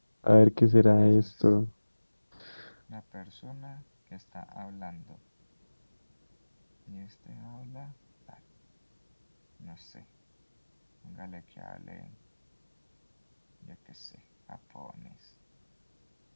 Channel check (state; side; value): inverted; both; correlation -1.00